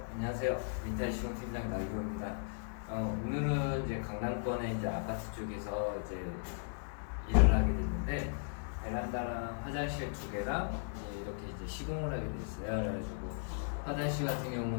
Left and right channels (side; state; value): right; silent; 53 dB below the other